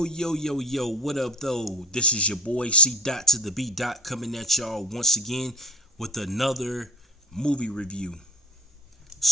up though? This is your boy C Dot to the B Dot coming at y'all once again with another movie review.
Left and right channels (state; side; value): normal; both; correlation 0.42